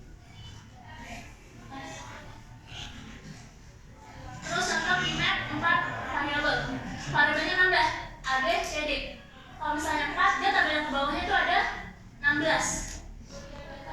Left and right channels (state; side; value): identical; both; correlation 1.00